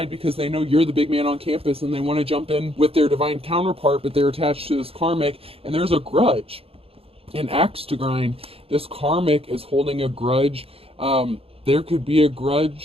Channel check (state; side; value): late; left; 0.28 ms